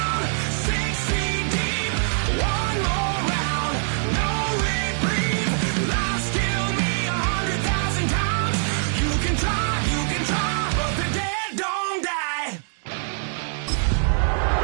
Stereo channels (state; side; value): silent; left; digital silence